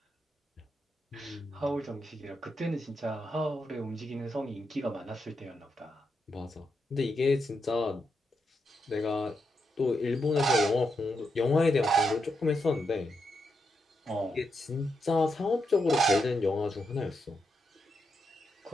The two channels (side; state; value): both; normal; correlation 0.84